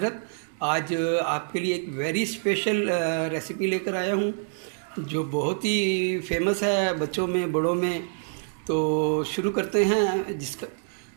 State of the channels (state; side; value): silent; left; digital silence